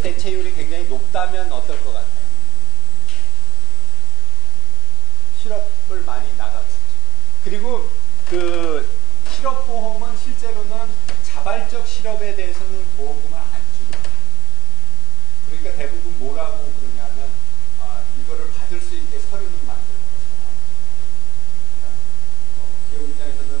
굉장히 높다면 어떨 것 같아요? 실업을 많이 나가겠죠. 그리고 그 실업보험은 실제로는 자발적 실업에 대해서는 보험금을 안 주는 거예요. 그러니까 대부분 뭐라고 그러냐면 이거를 받을 수 있게 서류는 만들어서 나오죠. 그러니까 기업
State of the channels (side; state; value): both; normal; correlation 0.37